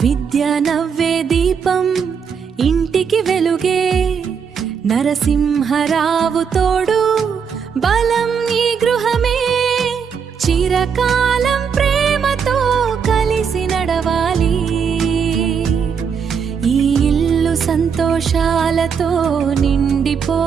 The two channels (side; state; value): left; quieter; 6.6 dB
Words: విద్య నవ్వే దీపం ఇంటికి వెలుగే, నరసింహరావు తోడు బలం ఈ గృహమే. చిరకాలం ప్రేమతో కలిసి నడవాలి, ఈ ఇల్లు సంతోషాలతో